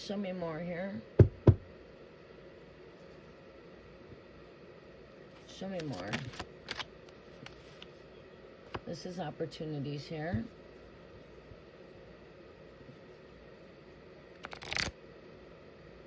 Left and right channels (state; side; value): identical; both; correlation 1.00